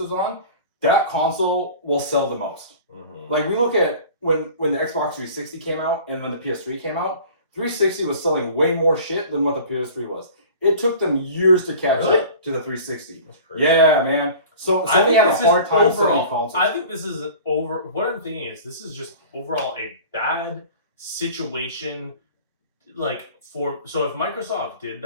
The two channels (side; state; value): both; inverted; correlation -0.42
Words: on, that console will sell the most. Mm-hmm. Like we look at when the Xbox 360 came out and when the PS3 came out, 360 was selling way more shit than what the PS3 was. It took them years to catch up to the 360. Yeah, man. So Sony had a hard time selling consoles. I think this is what I'm thinking is this is just overall a bad situation. Like so if Microsoft did